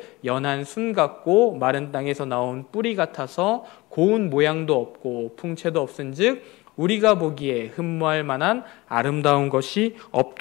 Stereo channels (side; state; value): right; quieter; 21.4 dB